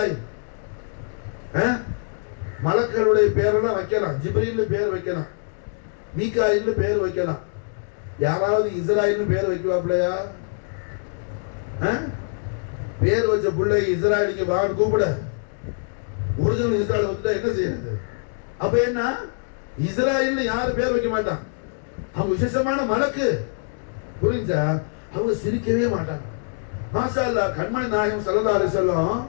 மலக்களுடைய பேரெல்லாம் வைக்கலாம், ஜிப்ரீல்னு பேர் வைக்கலாம், மீகாயில்னு பேர் வைக்கலாம். யாராவது இஸ்ராயில்னு பேர் வைக்கலாம்லையா? பேர் வச்ச பிள்ளை இஸ்ராயலுக்கு வாங்க கூப்பிட, ஒரிஜினல் இஸ்ராயல் வந்துட்டா என்ன செய்யறது? அப்ப என்ன, இஸ்ராயல்னு யாரும் பேர் வைக்க மாட்டான். அவங்க விசேஷமான மலக்கு, புரிஞ்சா? அவங்க சிரிக்கவே மாட்டாங்க. மாஷா அல்லாஹ். கண்மணி நாயகம் ஸல்லல்லாஹு அலைஹி வஸல்லம்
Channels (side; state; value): right; silent; digital silence